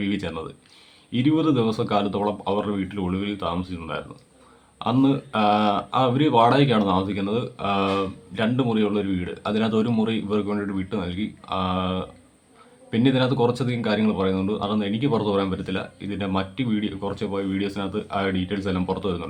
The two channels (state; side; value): identical; both; correlation 1.00